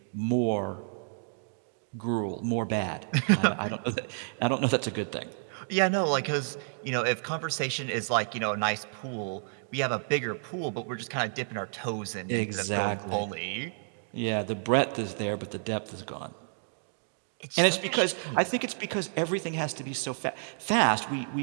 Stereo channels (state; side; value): silent; left; digital silence